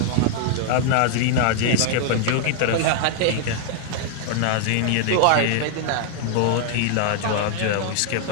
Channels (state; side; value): different; both; correlation -0.01